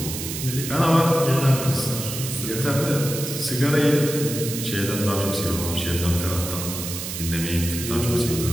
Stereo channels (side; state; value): right; noise; hiss, 6 dB below the sound